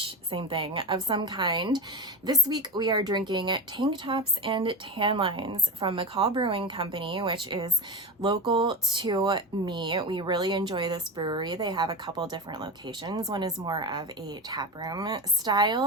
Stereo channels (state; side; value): normal; both; correlation 0.21